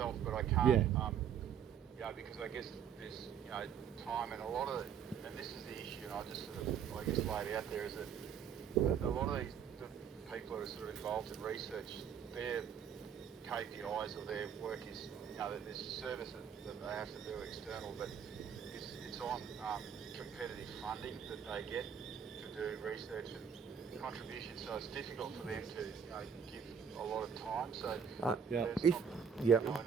but I can't, Yeah. you know, because I guess there's, you know, time and a lot of, and this is the issue, and I just sort of, I guess, laid out there, is that a lot of the people that are sort of involved in research, their KPIs or their work is, you know, there's a service that they have to do external, but it's on competitive funding that they get to do research and contribution, so it's difficult for them to, you know, give a lot of time. So Yeah. there's If- not, yeah. you know, I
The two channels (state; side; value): quieter; left; 7.7 dB